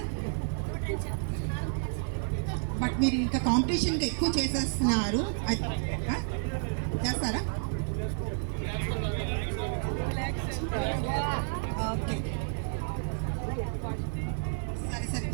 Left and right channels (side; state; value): left; silent; digital silence